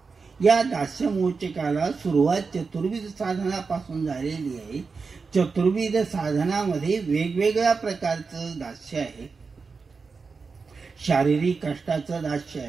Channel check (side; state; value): left; quieter; 4.8 dB